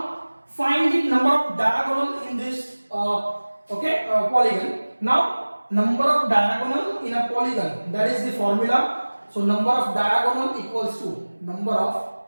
find the number of diagonal in this polygon. Now number of diagonal in a polygon, that is the formula. So number of diagonal equals to number of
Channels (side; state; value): both; inverted; correlation -1.00